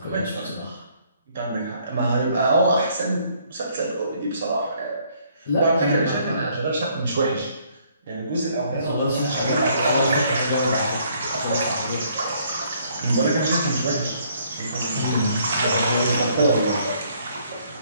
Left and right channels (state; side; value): inverted; both; correlation -0.65